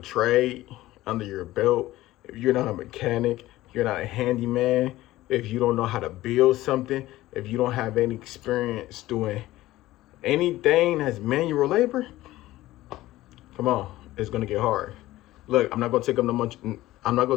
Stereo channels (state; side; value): quieter; right; 16.5 dB